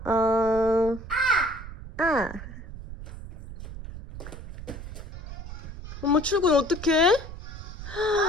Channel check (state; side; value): noise; right; rumble, 11 dB below the sound